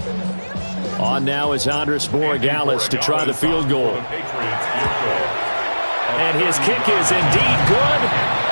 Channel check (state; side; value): inverted; both; correlation -1.00